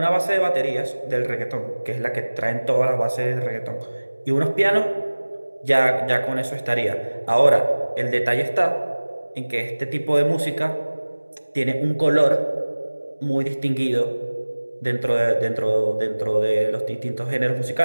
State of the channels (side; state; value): both; inverted; correlation -1.00